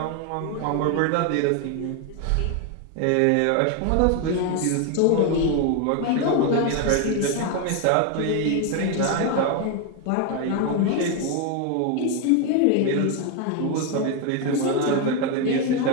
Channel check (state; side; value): different; both; correlation 0.01